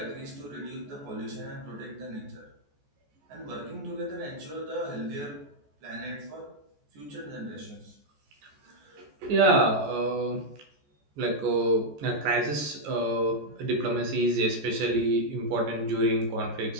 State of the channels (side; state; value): left; late; 14 ms